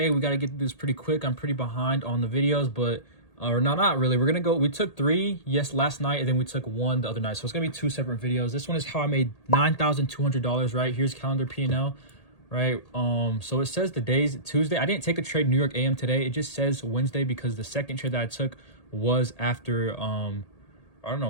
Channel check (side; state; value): right; late; 1.8 ms